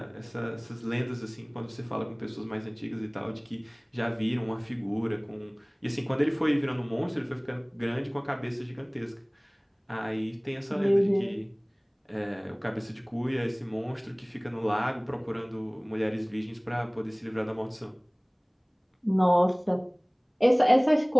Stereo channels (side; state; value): both; identical; correlation 1.00